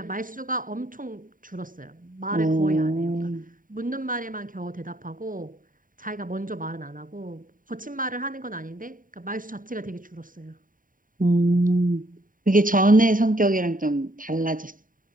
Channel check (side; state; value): left; late; 0.39 ms